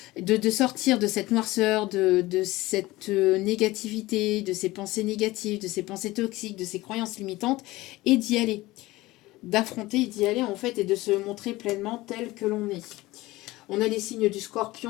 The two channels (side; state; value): right; quieter; 19.1 dB